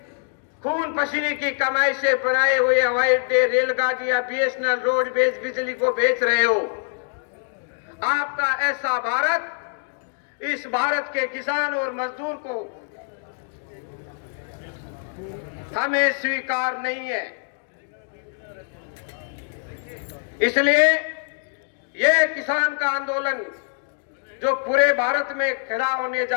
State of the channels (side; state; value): right; silent; digital silence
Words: खून पसीने की कमाई से बनाए हुए हवाई अड्डे, रेलगाड़ियां, बीएसएनएल, रोडवेज, बिजली को बेच रहे हो? आपका ऐसा भारत इस भारत के किसान और मजदूर को हमें स्वीकार नहीं है। इसलिए यह किसान का आंदोलन जो पूरे भारत में खड़ा होने